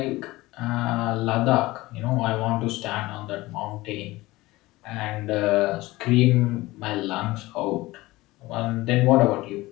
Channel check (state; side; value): quieter; right; 19.4 dB